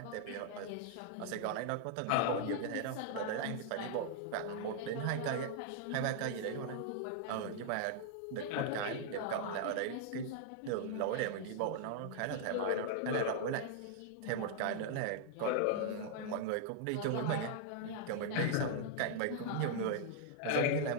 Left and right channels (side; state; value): both; different; correlation -0.01